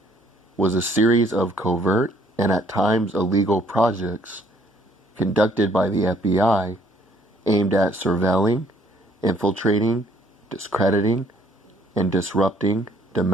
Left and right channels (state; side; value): normal; both; correlation 0.62